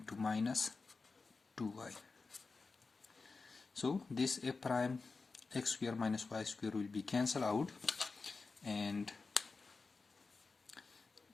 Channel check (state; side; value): quieter; right; 4.2 dB